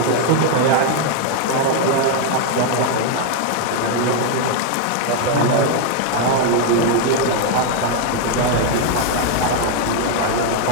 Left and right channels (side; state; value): both; different; correlation 0.00